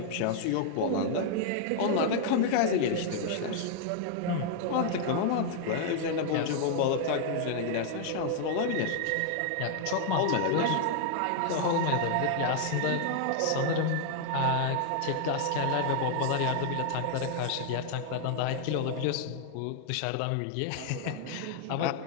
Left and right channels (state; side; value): different; both; correlation 0.00